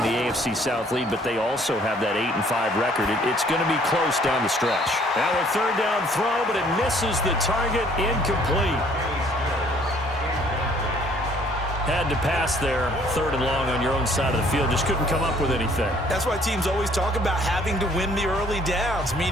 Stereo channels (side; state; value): both; normal; correlation 0.60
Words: the AFC South lead, but they also have that 8-5 record. It's going to be close down the stretch. Now a 3rd down throw, but it misses the target, incomplete. Had to pass there, 3rd and long on your own side of the field. Just couldn't come up with anything. That's why teams always talk about having to win the early downs,